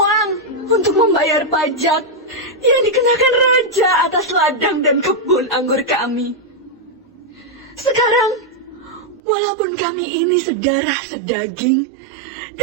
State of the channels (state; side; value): drops out; left; at 9.2 s